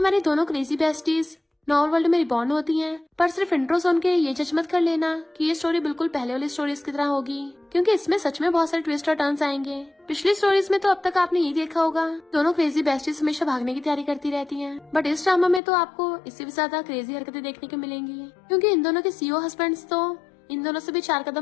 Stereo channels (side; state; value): right; drops out; at 15.6 s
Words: दोनों क्रेजी बेस्टीज नॉर्मल वर्ल्ड में रिबॉर्न होती हैं, पर सिर्फ इंट्रो सुन के ये जज मत कर लेना कि ये स्टोरी बिल्कुल पहले वाली स्टोरीज की तरह होगी, क्योंकि इसमें सच में बहुत सारे ट्विस्ट और टर्न्स आएंगे। पिछली स्टोरीज में तो अब तक आपने ये देखा होगा, दोनों क्रेजी बेस्टीज हमेशा भागने की तैयारी करती रहती हैं, बट इस ड्रामा में तो आपको इससे भी ज्यादा क्रेजी हरकतें देखने को मिलेंगी, क्योंकि इन दोनों के सीईओ हस्बैंड्स तो इन दोनों से भी 4